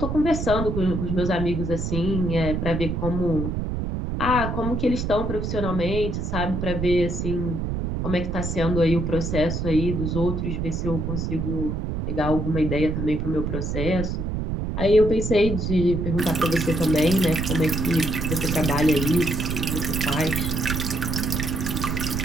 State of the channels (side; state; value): right; noise; rumble, 2 dB below the sound